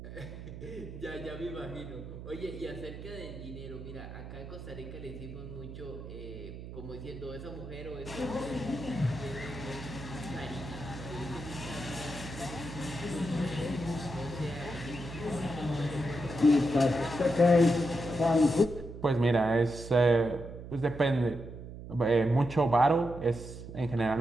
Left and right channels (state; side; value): noise; right; hum, 11 dB below the sound